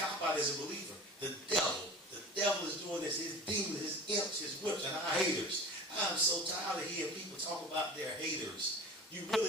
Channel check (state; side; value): normal; both; correlation 0.37